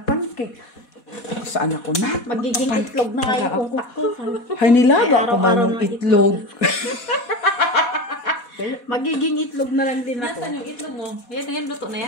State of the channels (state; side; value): late; right; 4.2 ms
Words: Saan ako na? Magiging itlog na nga yung utak ko. Hay, nilaga ko man araw-araw yung na itlog. Magiging itlog na lang din ako. Nasaan yung itlog mo? Yan na yan, luto na